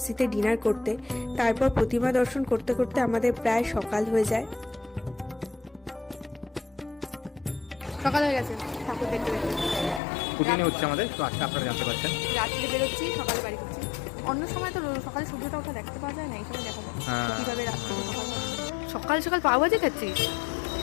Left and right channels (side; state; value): right; drops out; at 10.0 s